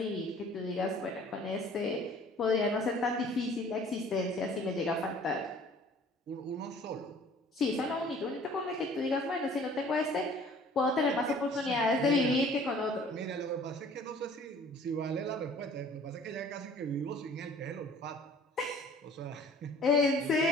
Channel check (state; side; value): normal; both; correlation 0.52